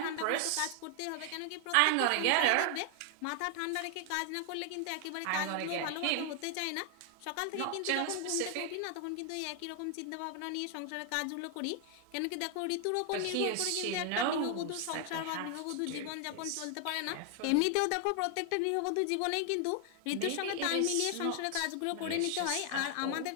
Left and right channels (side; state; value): both; different; correlation 0.00